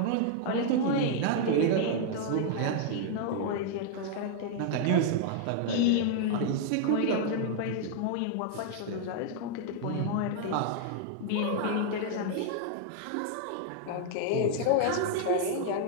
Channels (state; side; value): different; both; correlation 0.00